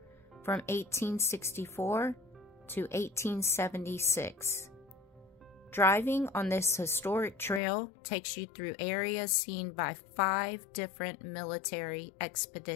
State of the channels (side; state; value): right; drops out; at 7.6 s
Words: from 1864 to 1876. Driving on this historic trail takes you through areas seen by 5 different military